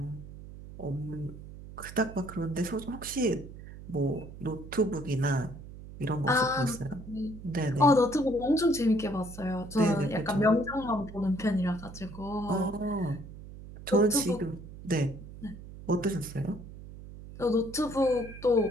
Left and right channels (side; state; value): right; noise; hum, 14 dB below the sound